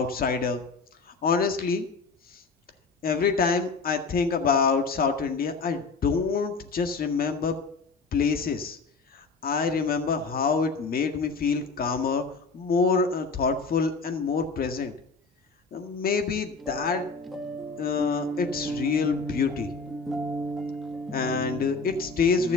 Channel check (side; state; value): right; quieter; 4.4 dB